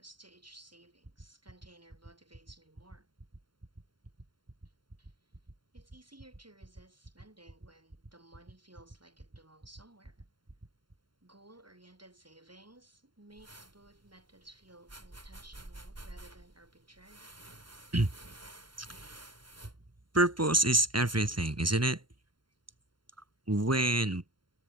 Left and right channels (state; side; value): late; left; 0.72 ms